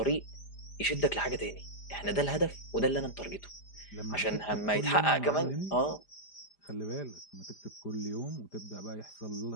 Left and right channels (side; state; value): right; late; 5.0 ms